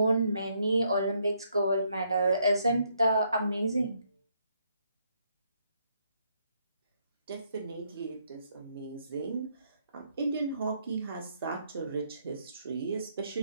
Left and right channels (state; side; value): inverted; both; correlation -0.73